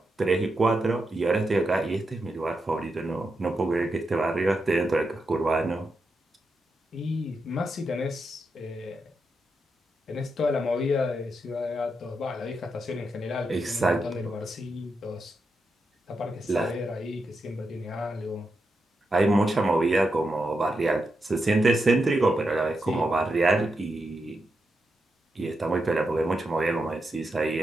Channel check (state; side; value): normal; both; correlation 0.86